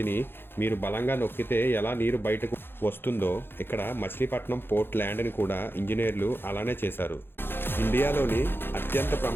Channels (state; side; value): late; right; 0.10 ms